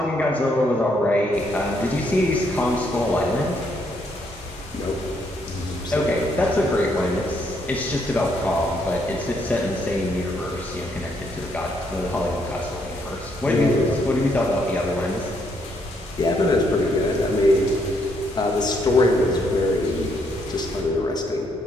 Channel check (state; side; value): normal; both; correlation 0.73